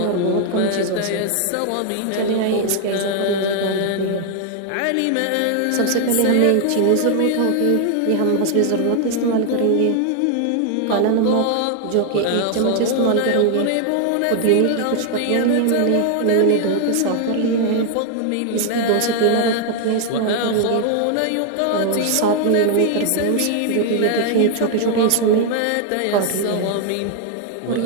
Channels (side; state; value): both; different; correlation 0.00